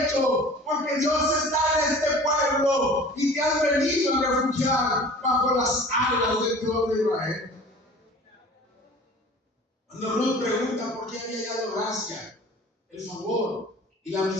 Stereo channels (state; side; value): normal; both; correlation 0.43